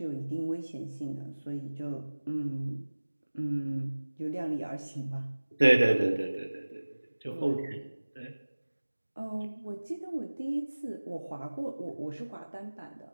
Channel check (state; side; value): inverted; both; correlation -1.00